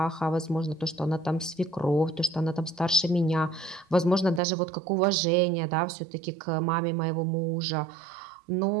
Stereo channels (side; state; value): left; drops out; at 4.4 s